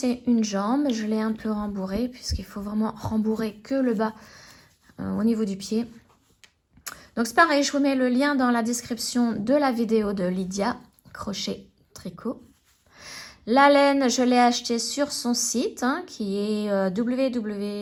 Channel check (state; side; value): identical; both; correlation 1.00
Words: une jambe. Je l'ai un peu rembourrée puisqu'il faut vraiment rembourrer que le bas au niveau du pied. Donc c'est pareil, je vous mets le lien dans la description de la vidéo de Lydia Crochet Tricot. La laine, je l'ai achetée sur son site hein, qui est